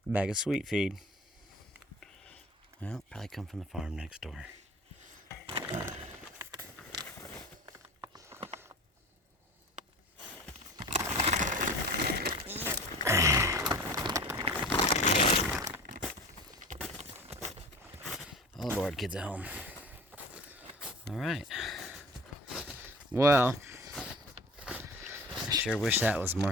Bag of sweet feed. Well, probably come from the farm next door. All aboard, kids at home. All right. Well, I sure wish that was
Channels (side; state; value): both; normal; correlation 0.39